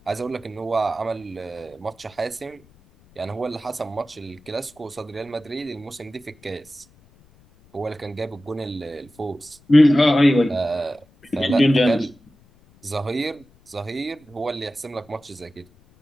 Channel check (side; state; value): left; noise; rumble, 29 dB below the sound